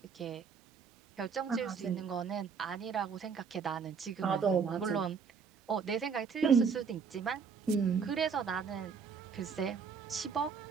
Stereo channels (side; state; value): left; quieter; 6.0 dB